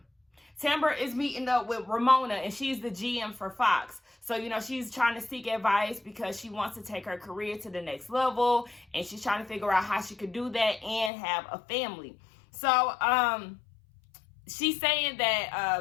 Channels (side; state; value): right; drops out; at 11.1 s